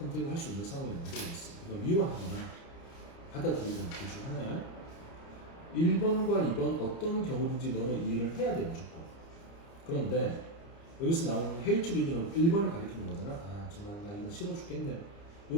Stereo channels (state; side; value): late; right; 30 ms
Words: 할 수 있는 상황이 만들어졌어. 이거 미워하거나 받아들이거나 둘 중 하나야. 1번과 2번 어떤 경우든지 너는 이 일을 해야 돼 무조건. 그런데 여기서 나오는 hatred는 1번을 가리키는 거잖아. 정말 나 이거 싫어 죽겠네.